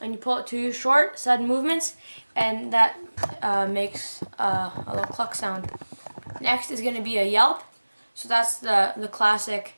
And you pull it to short sudden movements, and that makes a little cluck sound. Next is going to be a yelp. So that's the classic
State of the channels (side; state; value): both; inverted; correlation -1.00